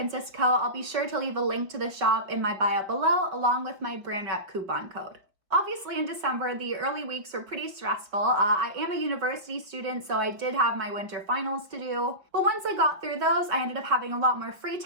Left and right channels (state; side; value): late; left; 5.6 ms